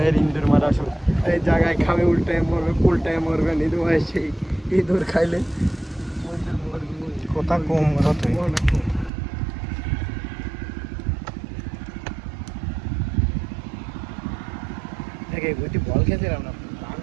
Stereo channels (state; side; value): drops out; left; at 9.1 s